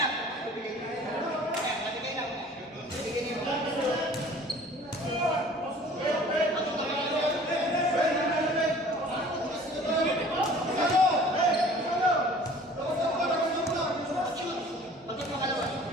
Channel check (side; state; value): both; normal; correlation 0.48